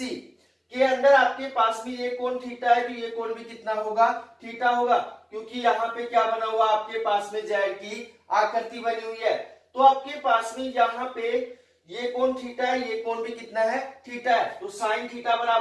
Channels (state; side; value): identical; both; correlation 1.00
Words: के अंदर आपके पास में ये कोण थीटा है, तो ये कोण भी कितना होगा, थीटा होगा, क्योंकि यहाँ पे क्या बना हुआ आपके पास में Z की आकृति बनी हुई है। तो आपके पास में यहाँ पे ये कोण थीटा है, ये कोण भी कितना है, थीटा है। तो साइन थीटा